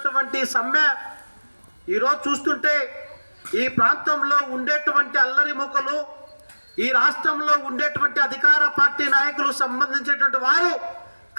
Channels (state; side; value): inverted; both; correlation -1.00